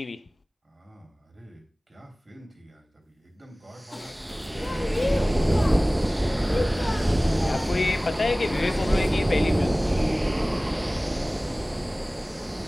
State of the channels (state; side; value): normal; both; correlation 0.98